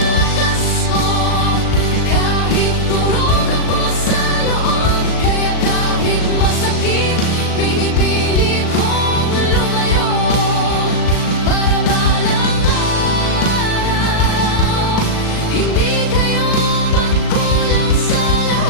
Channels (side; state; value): right; late; 38 ms